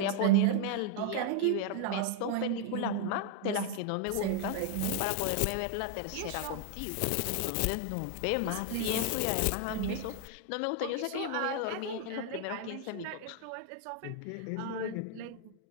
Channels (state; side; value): different; both; correlation 0.00